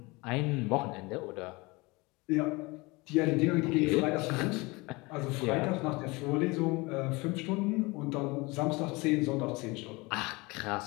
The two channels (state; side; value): quieter; right; 24.6 dB